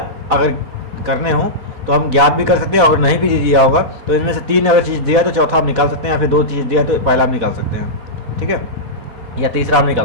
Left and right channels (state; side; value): late; left; 4.1 ms